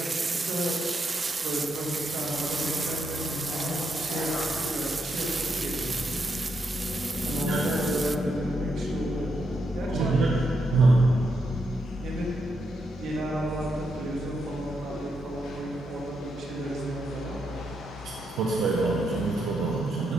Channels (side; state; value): both; normal; correlation 0.81